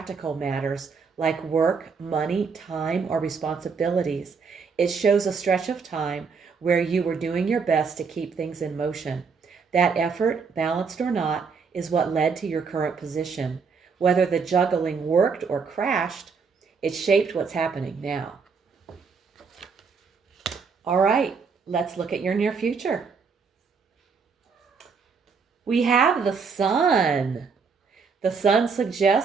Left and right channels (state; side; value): quieter; left; 5.4 dB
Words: matters like work, money, time, or responsibilities. It shows a stretch of time where you were doing your best to keep things in motion. That effort, balanced or not, is what led to your current position. Whether the juggling worked or crashed, it shaped what's happening now. All right, let's look at your near future. We have the Sun. The Sun